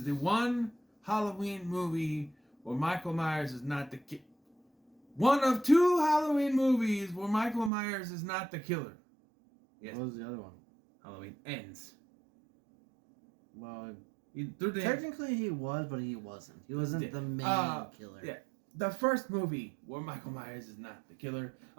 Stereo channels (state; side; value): drops out; left; at 7.7 s